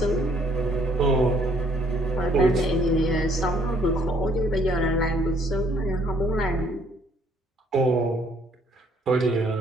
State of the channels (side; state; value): both; normal; correlation 0.63